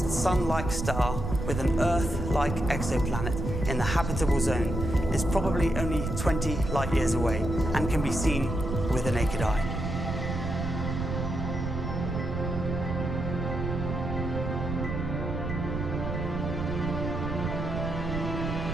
Sun-like star with an Earth-like exoplanet in the habitable zone is probably only 20 light years away and can be seen with the naked eye.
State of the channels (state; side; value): noise; right; rumble, 3 dB below the sound